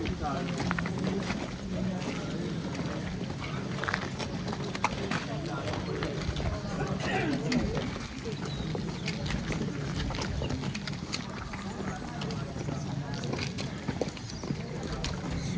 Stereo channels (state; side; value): identical; both; correlation 1.00